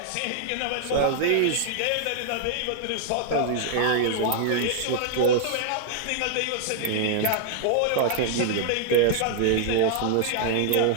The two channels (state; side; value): different; both; correlation 0.00